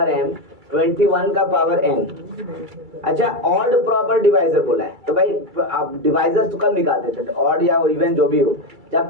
m, 21 का पावर n। अच्छा, ऑड प्रॉपर डिवाइजर बोला है, तो भाई आप डिवाइजर्स तो कब निकालते थे? ऑड या इवन जो भी हो,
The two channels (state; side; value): late; left; 2.3 ms